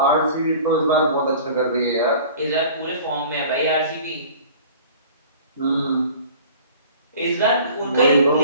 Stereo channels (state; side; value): inverted; both; correlation -0.45